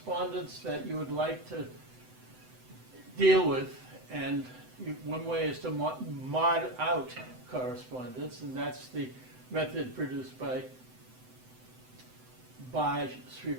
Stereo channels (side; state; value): left; late; 7.9 ms